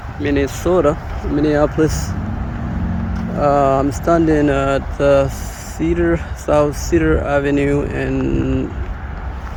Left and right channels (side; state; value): both; identical; correlation 1.00